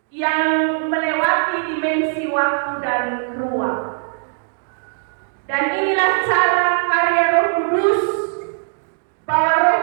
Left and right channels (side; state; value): left; silent; digital silence